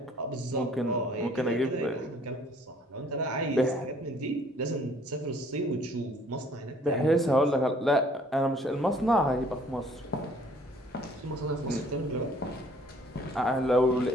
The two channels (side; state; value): both; normal; correlation 0.58